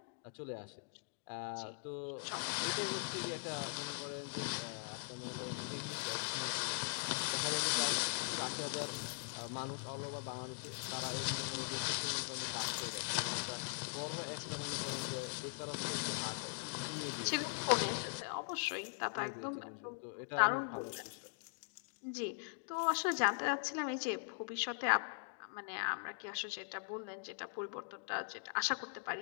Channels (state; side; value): silent; right; digital silence